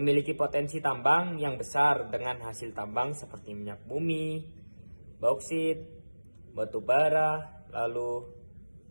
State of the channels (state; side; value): inverted; both; correlation -1.00